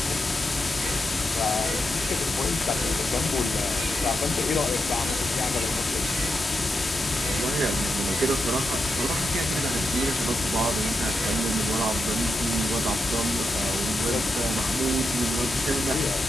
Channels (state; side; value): normal; both; correlation 0.87